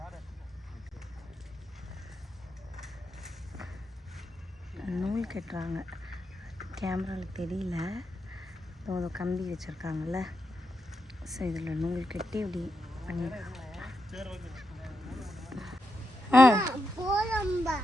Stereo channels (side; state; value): both; normal; correlation 0.85